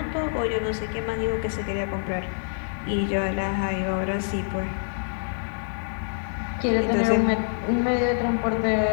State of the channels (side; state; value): right; silent; 61 dB below the other